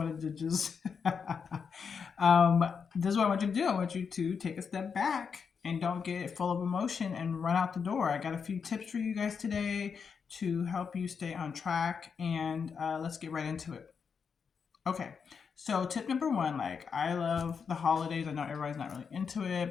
to um, this is what I want you to do. I want you to take a step back and don't get full of emotion and run out the door. I got a few tips for you guys today to help you stay on track, and let's get right into it. Okay, so tip number one, like I love the holidays. I know everybody's not really into it,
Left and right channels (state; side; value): quieter; right; 6.2 dB